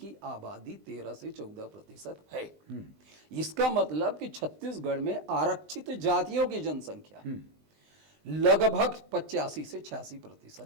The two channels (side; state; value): left; late; 20 ms